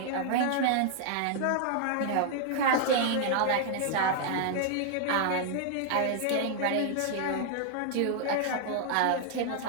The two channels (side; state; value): both; different; correlation 0.00